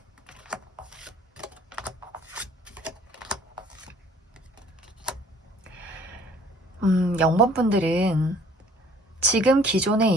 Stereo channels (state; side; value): normal; both; correlation 0.55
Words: 0번분들은 지금 기존의